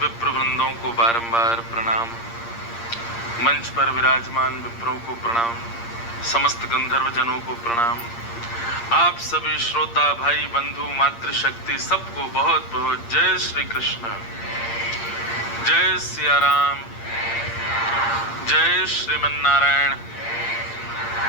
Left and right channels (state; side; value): late; right; 8.6 ms